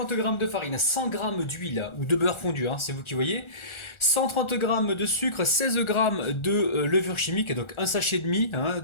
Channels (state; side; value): late; right; 1.4 ms